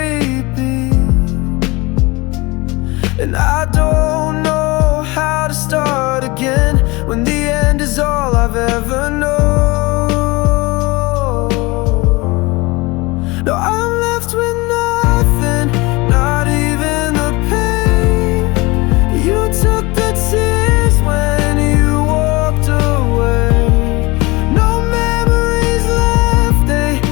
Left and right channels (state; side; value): quieter; right; 24.0 dB